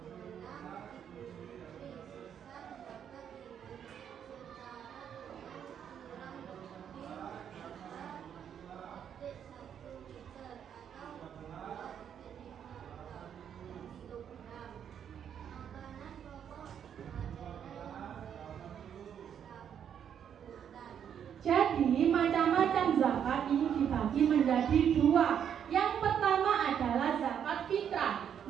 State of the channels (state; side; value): quieter; left; 8.6 dB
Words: Jadi macam-macam zakat ini dibagi menjadi 2. Yang pertama adalah zakat fitrah.